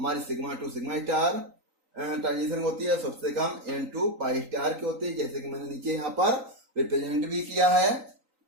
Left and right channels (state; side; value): late; left; 3.9 ms